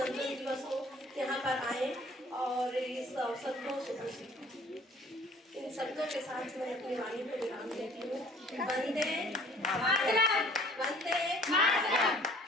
दिवस हो, यहाँ पर आए और इस अवसर को इन शब्दों के साथ मैं अपनी वाणी को विराम देती हूँ। वंदे मातरम, वंदे मातरम,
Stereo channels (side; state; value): both; normal; correlation 0.53